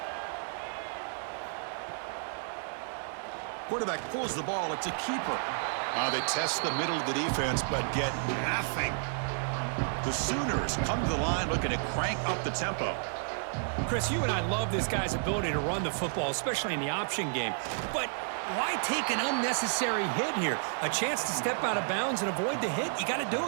Quarterback pulls the ball. It's a keeper. They test the middle of the defense, but get nothing. The Sooners come to the line looking to crank up the tempo. Chris, you and I love this guy's ability to run the football, especially in the option game. But why take an unnecessary hit here? A chance to step out of bounds and avoid the hit? You got to do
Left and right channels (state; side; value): silent; left; digital silence